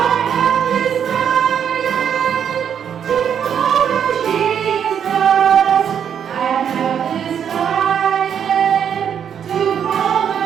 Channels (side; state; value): left; quieter; 8.3 dB